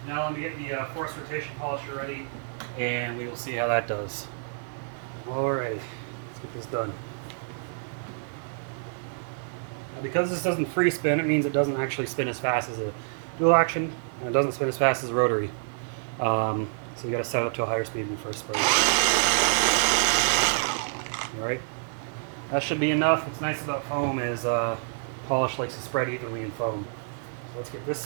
Now let me get the force rotation polisher ready, and we will see how that does. Alright, let's get this done. Now because this doesn't free spin, it means it doesn't actually spin as fast as a dual action, and it doesn't spin as fast as a rotary. So you got to set it up to a higher speed when you first spray. Alright, that should be enough. What's nice about foam is polish likes to spread evenly in foam. So let's get this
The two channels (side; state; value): left; silent; digital silence